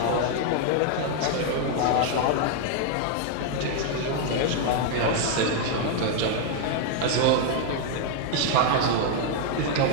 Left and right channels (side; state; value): both; different; correlation 0.00